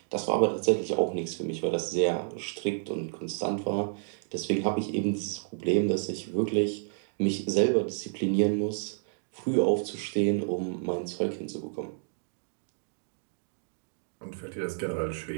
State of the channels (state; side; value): silent; left; digital silence